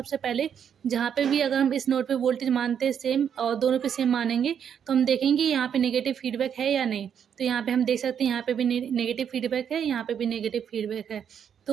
पहले जहाँ पे भी अगर हम इस नोड पे वोल्टेज मानते हैं सेम और दोनों पे सेम मानेंगे, तो हम देखेंगे यहाँ पे नेगेटिव फीडबैक है या नहीं। तो यहाँ पे हम देख सकते हैं यहाँ पे भी नेगेटिव फीडबैक है, यहाँ पे भी नेगेटिव फीडबैक है।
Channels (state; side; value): quieter; left; 8.2 dB